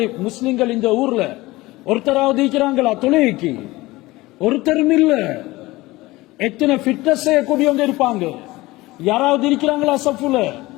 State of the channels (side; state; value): right; quieter; 19.8 dB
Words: முஸ்லிம்கள் இந்த ஊர்ல? ஒருத்தராவது இருக்கிறாங்களா தொழிலுக்கு? ஒருத்தரும் இல்ல. எத்தனை ஃபிட்னஸ் செய்யக்கூடியவங்க இருப்பாங்க? யாராவது இருக்கிறாங்களா சஃபுல?